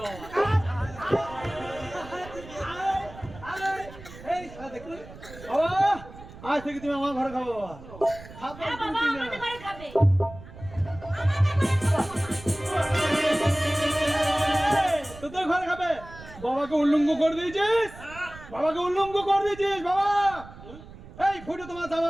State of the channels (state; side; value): noise; right; rumble, 17 dB below the sound